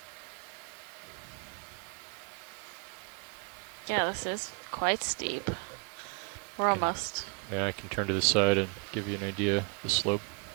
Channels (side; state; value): left; quieter; 35.2 dB